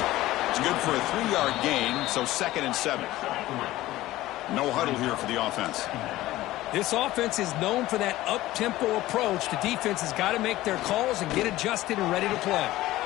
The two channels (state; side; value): quieter; right; 16.4 dB